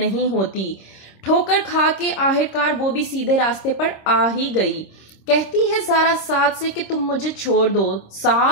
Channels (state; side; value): late; right; 26 ms